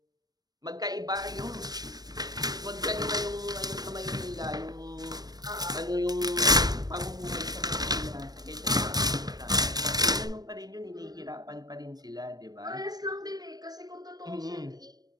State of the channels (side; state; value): left; late; 0.19 ms